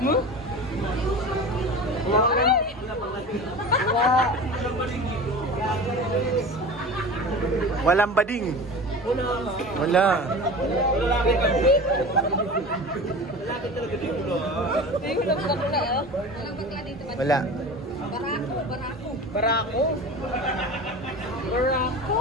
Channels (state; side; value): normal; both; correlation 0.34